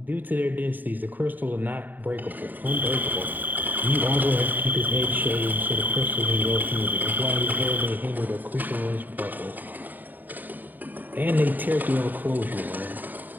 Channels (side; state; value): left; late; 0.088 ms